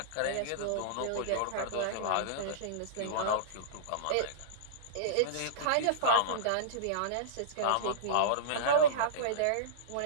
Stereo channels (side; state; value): both; different; correlation -0.04